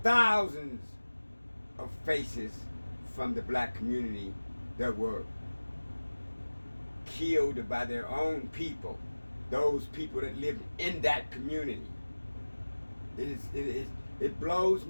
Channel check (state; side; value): inverted; both; correlation -1.00